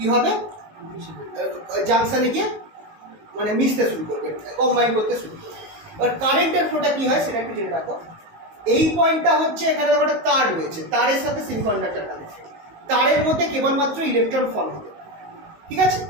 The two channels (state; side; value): late; left; 19 ms